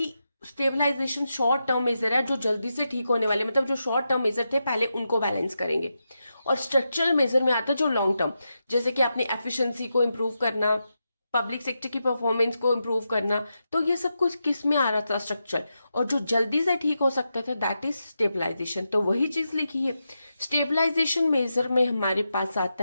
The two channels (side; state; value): both; inverted; correlation -0.87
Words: स्टेबलाइजेशन शॉर्ट टर्म मेजर है, जो जल्दी से ठीक होने वाले, मतलब जो शॉर्ट टर्म मेजर थे पहले उनको बैलेंस करेंगे। और स्ट्रक्चरल मेजर में आता है जो लॉन्ग टर्म, जैसे कि अपनी एफिशिएंसी को इंप्रूव करना, पब्लिक सेक्टर की परफॉर्मेंस को इंप्रूव करना। तो ये सब कुछ किस में आ रहा था, स्ट्रक्चर। और जो जल्दी से ठीक हो सकता था दैट इज स्टेबलाइजेशन। तो वही चीज लिखी है। स्टेबलाइजेशन मेजर में हमारे पास